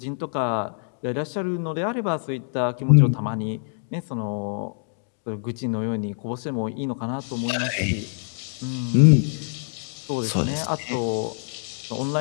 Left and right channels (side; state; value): right; silent; digital silence